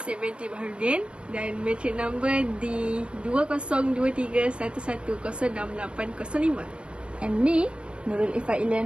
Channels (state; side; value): late; left; 0.057 ms